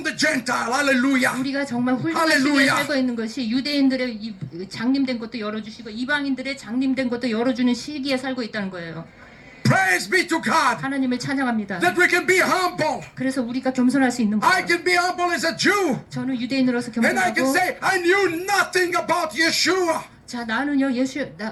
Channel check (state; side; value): identical; both; correlation 1.00